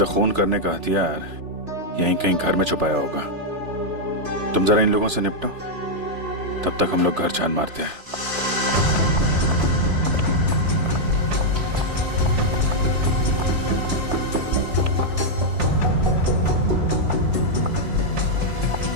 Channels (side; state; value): left; late; 3.4 ms